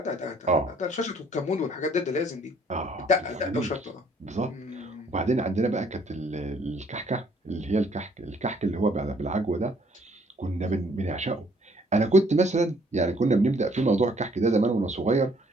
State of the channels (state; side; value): normal; both; correlation 0.63